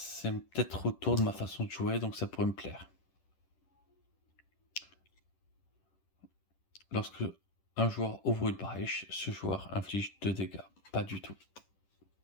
peut-être autour de ma façon de jouer, donc ça pourrait me plaire. Lorsque un joueur ouvre une brèche, ce joueur inflige 2 dégâts. Pas du tout.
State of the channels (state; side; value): late; right; 10 ms